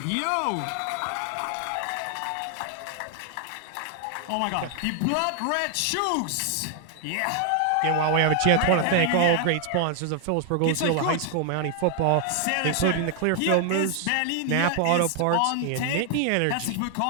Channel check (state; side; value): different; both; correlation 0.00